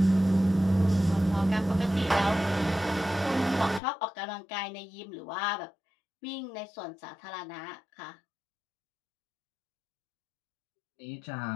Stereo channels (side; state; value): right; drops out; at 3.8 s